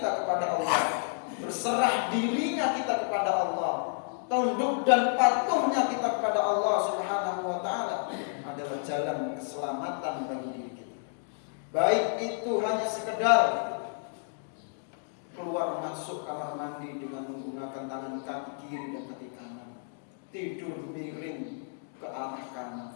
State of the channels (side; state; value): right; silent; digital silence